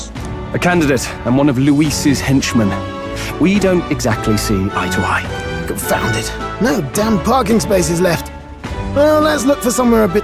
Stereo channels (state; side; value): identical; both; correlation 1.00